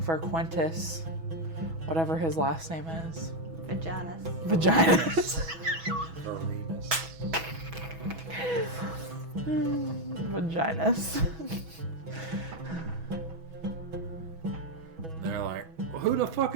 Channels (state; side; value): late; left; 6.1 ms